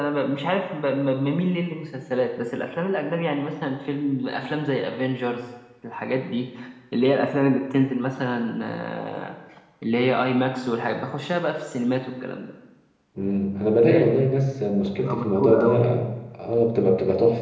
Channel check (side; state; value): both; identical; correlation 1.00